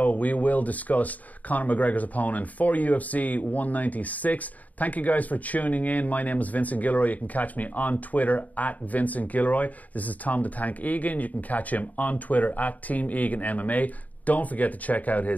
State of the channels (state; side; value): late; right; 0.075 ms